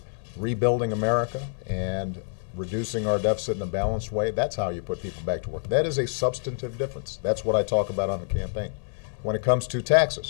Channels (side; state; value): right; silent; 60 dB below the other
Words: rebuilding America and reducing our deficit in a balanced way, that's how you put people back to work. That is a substantive difference. That's what I talk about on the campaign. when it comes to